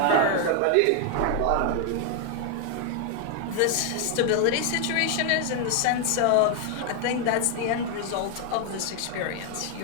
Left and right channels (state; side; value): different; both; correlation 0.00